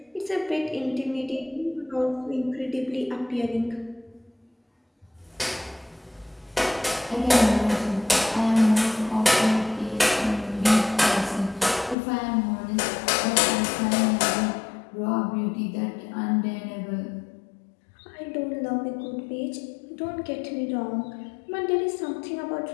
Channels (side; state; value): right; drops out; at 12.0 s